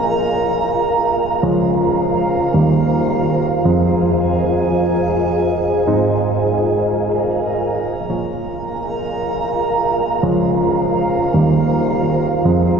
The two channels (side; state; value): right; noise; rumble, 13 dB below the sound